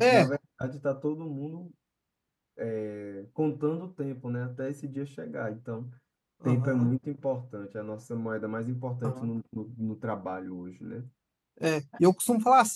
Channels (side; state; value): both; identical; correlation 1.00